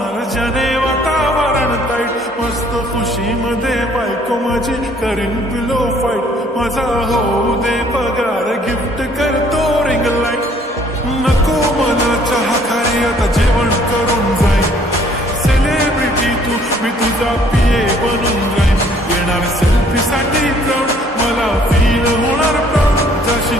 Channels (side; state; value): both; normal; correlation 0.61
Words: ज्याने वातावरण ताईट, मस्त खुशीमध्ये बायको माझी करीन पिलो फाईट, माझा होऊ दे पगार गिफ्ट करतो रिंग लाईट, नको मला चहा खारी आता जेवण करून जाईन, सेलिब्रिटी तू मी तुझा पिये बनून जाईन, येणार सेल्फी साठी क्राऊड मला फील होणार प्राऊड,